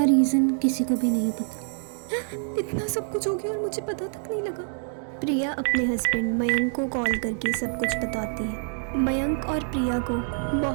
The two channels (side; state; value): left; silent; 56 dB below the other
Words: रीज़न किसी को भी नहीं पता। इतना सब कुछ हो गया और मुझे पता तक नहीं लगा। प्रिया अपने हस्बैंड मयंक को कॉल करके सब कुछ बताती है। मयंक और प्रिया को